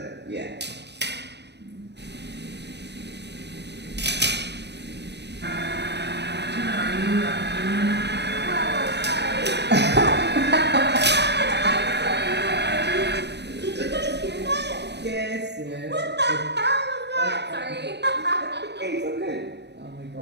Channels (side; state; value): left; late; 0.50 ms